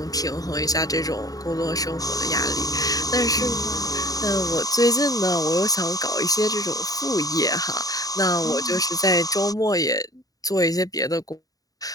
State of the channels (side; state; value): right; late; 0.18 ms